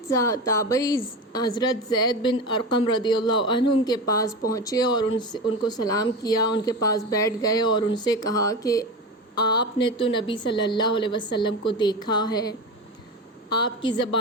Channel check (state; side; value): normal; both; correlation 0.24